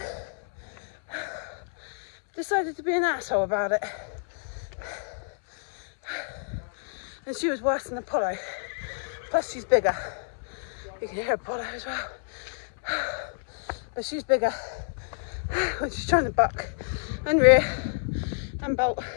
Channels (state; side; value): silent; right; 59 dB below the other